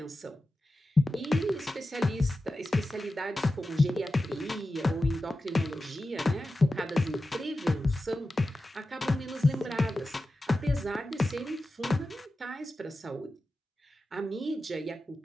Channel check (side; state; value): both; normal; correlation 0.93